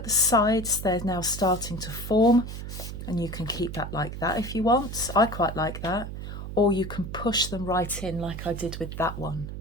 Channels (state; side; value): noise; right; hum, 8 dB below the sound